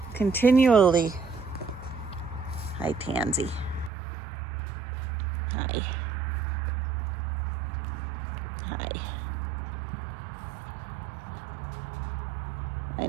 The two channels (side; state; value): left; drops out; at 3.9 s